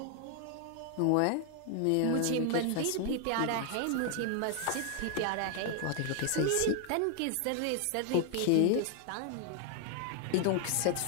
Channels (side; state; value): both; different; correlation 0.00